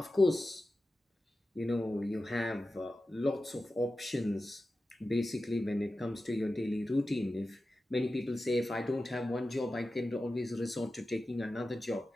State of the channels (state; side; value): normal; both; correlation 0.93